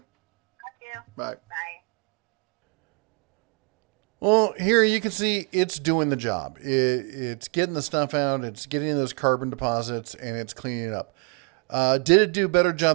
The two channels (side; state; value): left; quieter; 38.0 dB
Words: you. Bye. Bye. Well, here you can see it's doing the job. It's getting the stuff out. It's getting those carbon deposits, and it's cleaning it up. Did it do a better